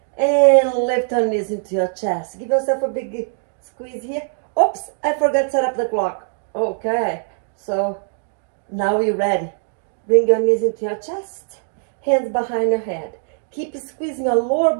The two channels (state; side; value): silent; left; digital silence